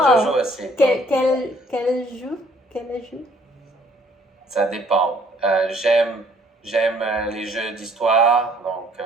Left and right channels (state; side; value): normal; both; correlation 0.61